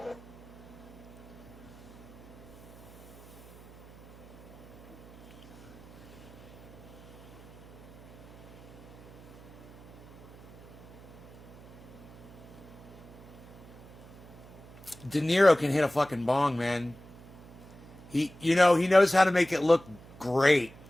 De Niro can hit a fucking bong, man. He knows how to make it look great.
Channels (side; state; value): right; noise; hum, 19 dB below the sound